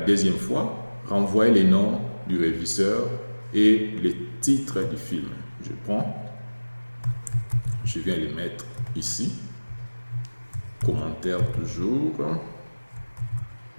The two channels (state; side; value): inverted; both; correlation -1.00